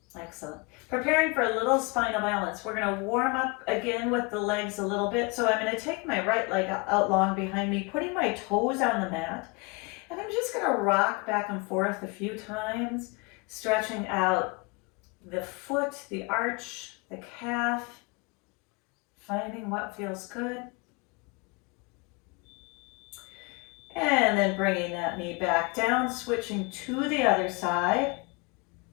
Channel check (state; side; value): quieter; right; 28.2 dB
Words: Excellent. Preparing for a little spinal balance. We're going to warm up again with the legs a little bit. So I'm going to take my right leg out long behind me, putting my toes on the mat. And I'm just going to rock back and forth a few times, stretching out the foot, the arch, the calf, finding what feels good. And then bringing that knee back down, switching to the other side.